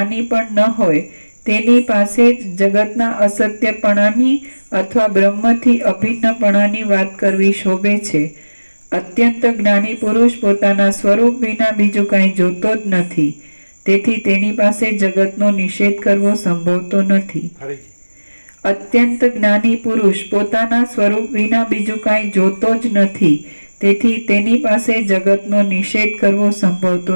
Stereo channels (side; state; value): both; inverted; correlation -1.00